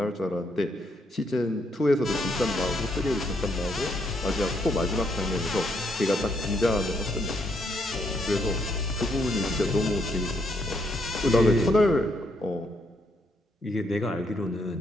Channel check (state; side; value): normal; both; correlation 0.74